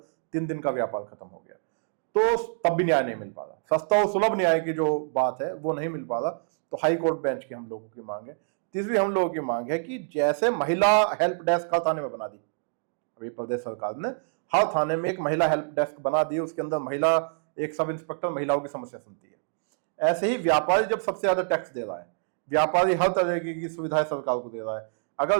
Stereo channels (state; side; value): silent; left; digital silence